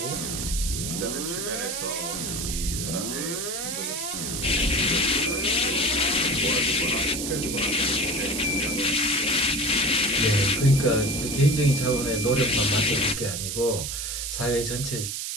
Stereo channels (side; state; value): right; noise; hiss, 4 dB below the sound